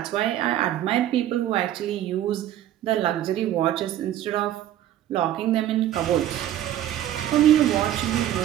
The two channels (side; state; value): left; quieter; 12.1 dB